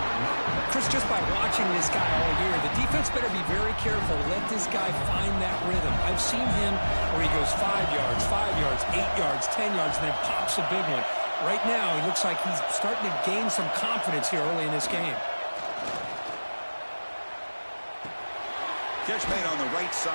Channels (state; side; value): inverted; both; correlation -1.00